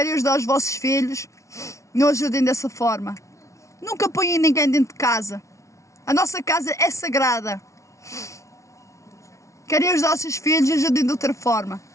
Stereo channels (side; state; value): right; late; 0.14 ms